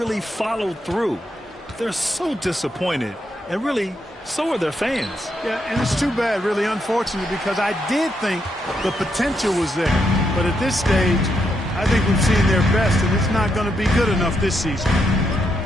followed through. They're so disappointed, and really, so are their fans. Yeah, and it's too bad, really unfortunate, because I did think the potential was there. But at this stage, I think we've seen their best, and it's not going to be good enough this season.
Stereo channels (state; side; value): normal; both; correlation 0.80